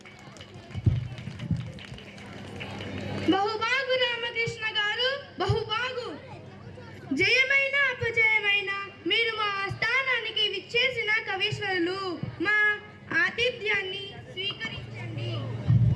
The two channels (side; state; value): both; identical; correlation 1.00